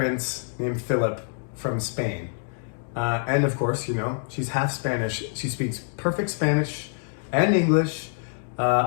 named Philip from Spain. And of course, she's half Spanish. She speaks perfect Spanish and English.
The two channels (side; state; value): right; silent; digital silence